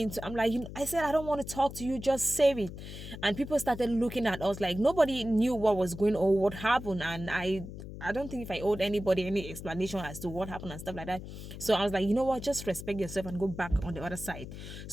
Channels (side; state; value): left; noise; hum, 11 dB below the sound